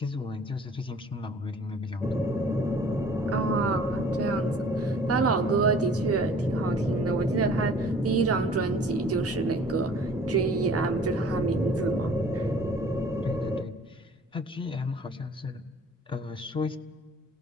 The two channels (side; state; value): both; normal; correlation 0.51